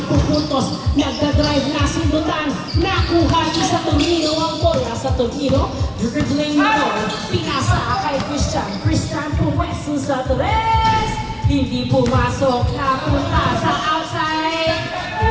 pupuntos? Nagdadrive na sundutan. Nakuha ni sa Torino ang bola sa Torino. Dribbling mo, pinasa kay Christian. Christian puwesto sa tres. Hindi pumasok, napunta sa outside.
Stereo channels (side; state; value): both; identical; correlation 1.00